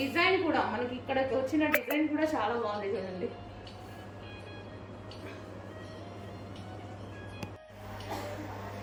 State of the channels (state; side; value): identical; both; correlation 1.00